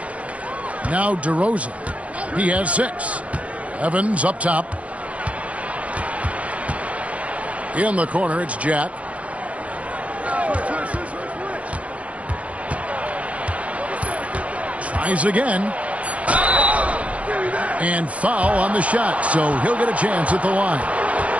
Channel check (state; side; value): late; left; 0.065 ms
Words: Now DeRozan. He has 6. Evans up top. In the corner, it's Jack. Tries again. And foul on the shot, so he'll get a chance at the line.